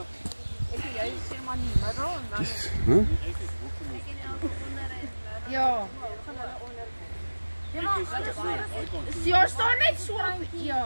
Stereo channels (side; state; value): both; inverted; correlation -1.00